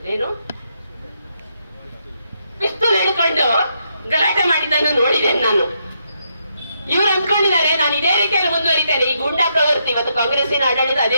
ಪಿಸ್ತೂಲ್ ಹಿಡ್ಕೊಂಡು ಗಲಾಟೆ ಮಾಡಿದ್ದನ್ನು ನೋಡಿದ್ದೇನೆ ನಾನು. ಇವರು ಅಂದ್ಕೊಂಡಿದ್ದಾರೆ ನಾನು ಇದೇ ರೀತಿಯಲ್ಲಿ ಮುಂದುವರಿತೇನೆ. ಈ ಗೂಂಡಾ ಪ್ರವೃತ್ತಿ ಇವತ್ತು ಕಾಂಗ್ರೆಸ್ಸಿನ ಆಡಳಿತ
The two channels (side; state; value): both; inverted; correlation -0.78